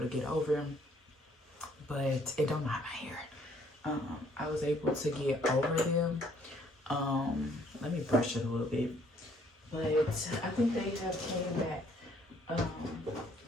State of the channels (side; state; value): both; normal; correlation 0.64